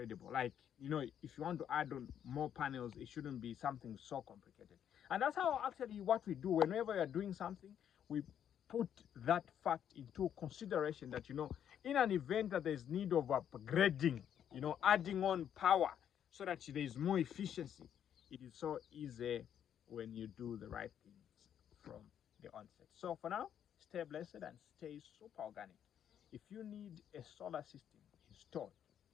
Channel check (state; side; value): quieter; right; 9.4 dB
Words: Like, you know, if you want to add on more panels, it shouldn't be something so complicated. And that's how actually what we do whenever you're doing something, we put that fact into consideration, that, you know, in an event that there's need of upgrading, you know, adding on power so that there is more efficiency, it is so easy when you do the right things from the onset. So for now, stay blessed and stay super organic. If you need a solar system installed,